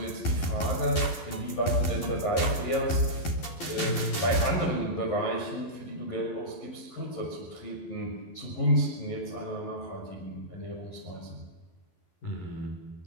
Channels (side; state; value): right; late; 11 ms